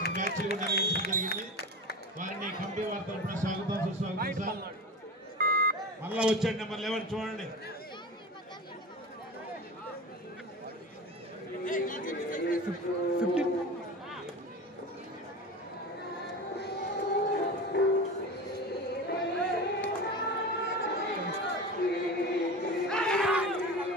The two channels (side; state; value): both; normal; correlation 0.29